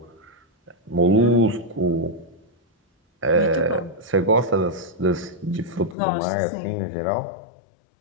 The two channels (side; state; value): right; drops out; at 6.0 s